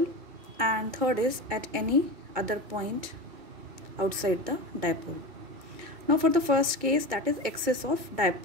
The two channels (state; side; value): late; left; 2.3 ms